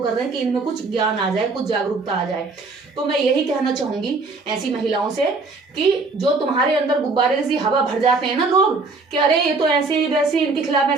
रहे हैं कि इनमें कुछ ज्ञान आ जाए, कुछ जागरूकता आ जाए। तो मैं यही कहना चाहूंगी ऐसी महिलाओं से कि जो तुम्हारे अंदर गुब्बारे जैसी हवा भर जाते हैं ना लोग कि अरे ये तो ऐसे वैसे इनके खिलाफ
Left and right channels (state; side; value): quieter; left; 3.8 dB